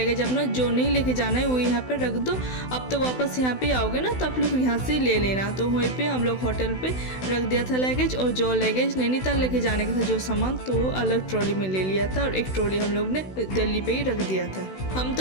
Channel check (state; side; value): late; right; 16 ms